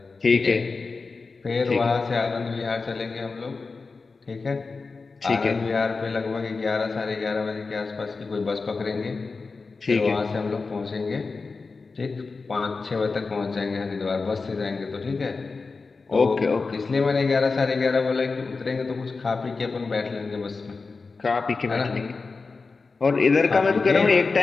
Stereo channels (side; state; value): right; quieter; 4.2 dB